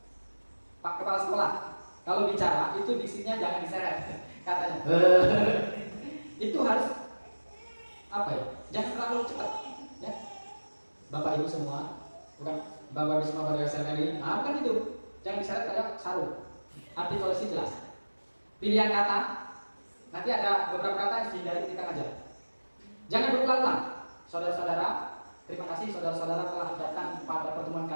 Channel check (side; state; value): both; inverted; correlation -1.00